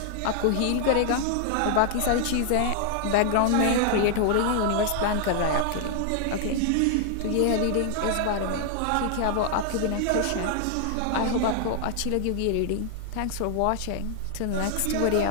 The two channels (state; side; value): different; both; correlation 0.00